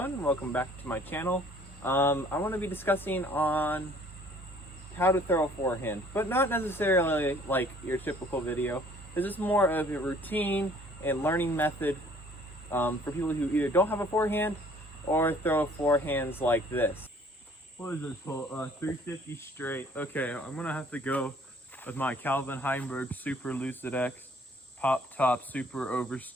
welcome back to my channel. I want to be discussing on how to throw a forehand, but not necessarily like your typical video. This is more of a routine and learning method for people who either don't have a forehand or throw forehands like this. What is this hole? 350 straight. Okay, I'm gonna have to go with my Calvin Heinberg Super Lucid X Pop Top Super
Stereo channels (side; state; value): both; normal; correlation 0.57